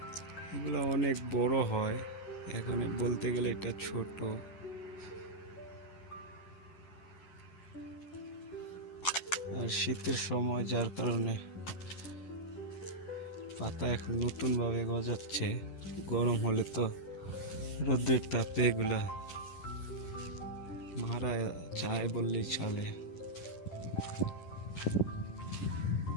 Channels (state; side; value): late; right; 10 ms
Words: এগুলো অনেক বড় হয়, এখন বলতে গেলে এটা ছোট। আর শীতের সময় যার কারণে পাতা এখন নতুন ভাবে গজাচ্ছে। গরম হলে তো রোদের তাপে এগুলা মারা যায় বললেই চলে।